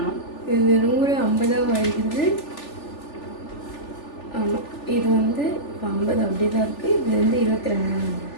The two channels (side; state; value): right; late; 3.4 ms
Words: இது 100 50 ஆகிடுது. ஆமாம், இது வந்து 50 அப்படியே தான் இருக்குது. இது வந்து 22.